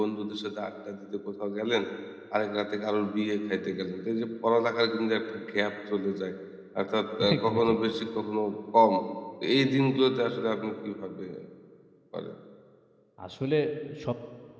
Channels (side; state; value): both; identical; correlation 1.00